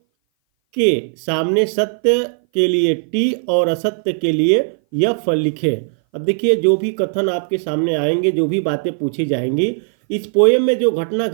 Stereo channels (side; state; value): left; silent; 59 dB below the other